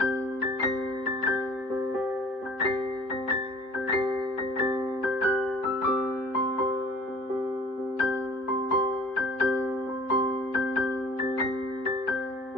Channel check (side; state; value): right; late; 3.8 ms